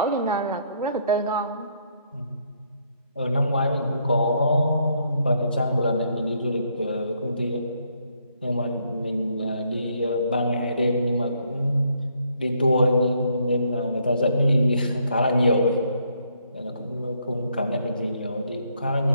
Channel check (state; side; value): inverted; both; correlation -0.71